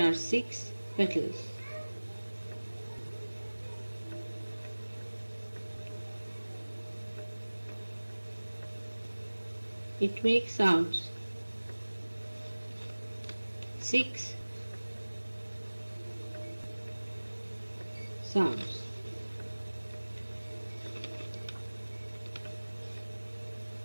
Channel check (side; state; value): both; inverted; correlation -1.00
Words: are 6 petals, it makes sounds 6 sounds.